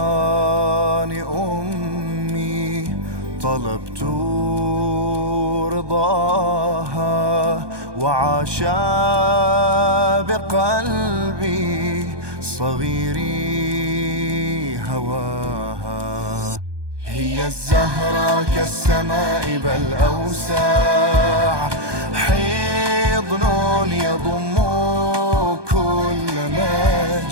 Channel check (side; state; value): left; late; 1.2 ms